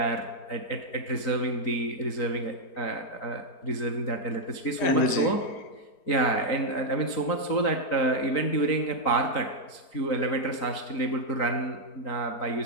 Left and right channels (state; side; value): late; right; 4.4 ms